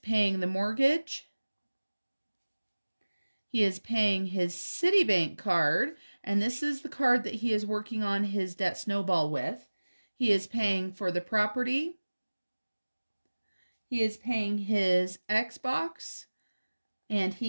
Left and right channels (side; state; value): both; inverted; correlation -1.00